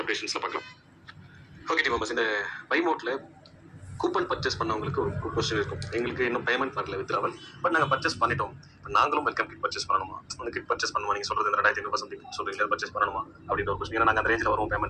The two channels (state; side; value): identical; both; correlation 1.00